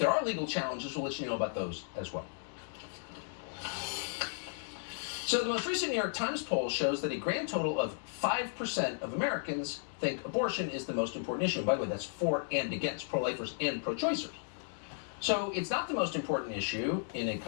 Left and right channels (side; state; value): right; silent; digital silence